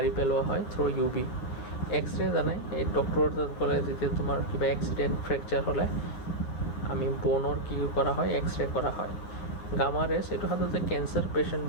পেলোৱা হয় থ্ৰু UV। এক্সৰে জানাই, এই ডক্টৰৰ তাত গ'লে যেতিয়া তোমাৰ কিবা এক্সিডেণ্ট, ফ্ৰেকচাৰ হ'লে আমি বনৰ কি কৰা হয়? এক্সৰে কৰা হয়। গামা ৰেজ, এইটো সাধাৰণতে কেঞ্চাৰ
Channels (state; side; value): late; right; 9.5 ms